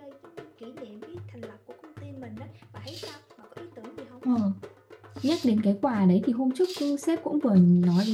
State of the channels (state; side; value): identical; both; correlation 1.00